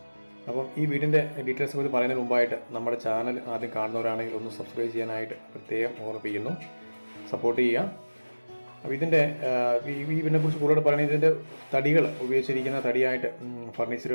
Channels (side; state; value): both; inverted; correlation -1.00